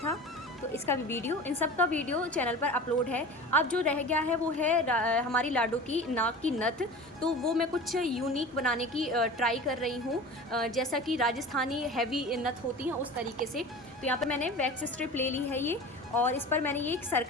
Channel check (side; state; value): both; normal; correlation 0.36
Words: तो इसका भी वीडियो, इन सब का वीडियो चैनल पर अपलोड है। अब जो रह गया है वो है हमारी लाडू की नाक की नथ। तो वो मैं कुछ यूनिक बनाने की ट्राई कर रही हूँ, जैसा कि राजस्थानी हैवी नथ होती हैं उस तरीके से। तो यहाँ पर मैंने वैक्स स्ट्रिप ले ली है ये, और इस पर मैंने ये एक